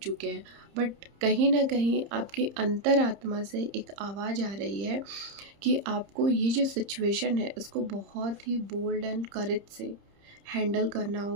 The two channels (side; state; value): left; late; 30 ms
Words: हैं, बट कहीं ना कहीं आपकी अंतरात्मा से एक आवाज़ आ रही है कि आपको ये जो सिचुएशन है इसको बहुत ही बोल्ड एंड करेज से हैंडल करना